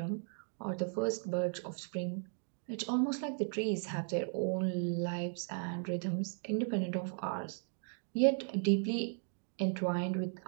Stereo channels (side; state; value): left; silent; 53 dB below the other